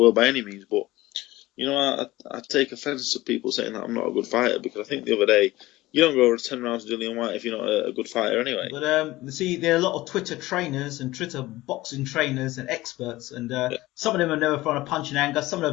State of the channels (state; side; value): quieter; right; 18.2 dB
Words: world by any means. But I take offence to people saying that I'm not a good fighter, because I think the other day, you don't go over 10 rounds with Dillian White if you're not a good fighter anyway. But see, there are a lot of Twitter trainers and Twitter boxing trainers and experts, and Yeah. some of them have never thrown a punch in anger, some of them